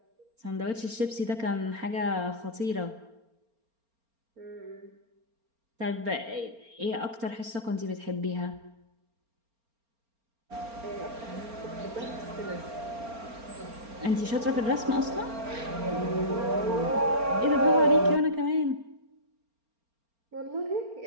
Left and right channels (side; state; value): left; late; 4.3 ms